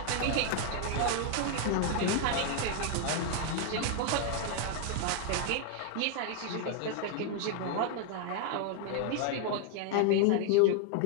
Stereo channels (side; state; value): both; different; correlation 0.00